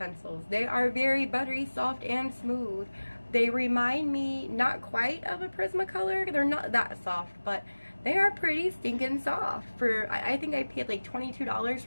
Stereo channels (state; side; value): inverted; both; correlation -1.00